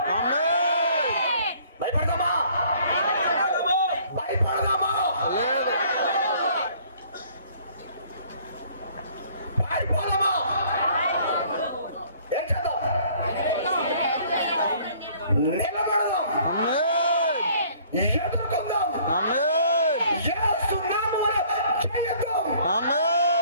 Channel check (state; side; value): inverted; both; correlation -0.57